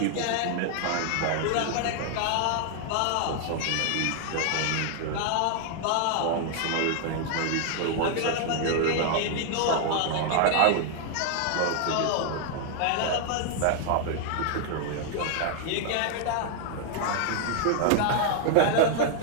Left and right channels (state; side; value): different; both; correlation 0.00